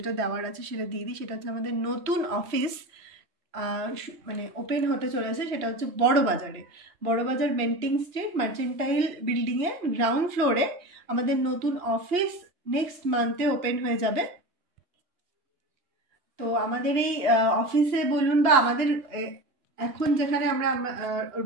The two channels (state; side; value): late; left; 2.8 ms